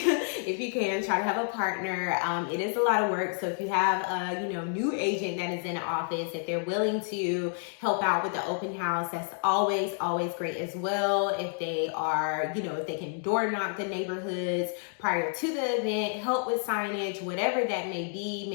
you can, try to have a partner. It is a lot of work. So if you have a new agent that is in the office, if they're willing to help out with the open house, that's always great as well. If they are, if they can door knock the neighborhoods prior to the event, help with signage, whatever that may be.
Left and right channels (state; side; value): silent; right; 58 dB below the other